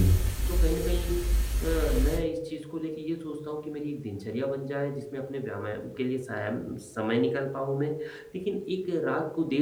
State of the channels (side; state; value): both; identical; correlation 1.00